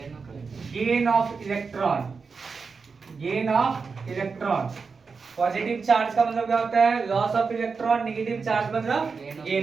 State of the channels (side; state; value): left; quieter; 5.0 dB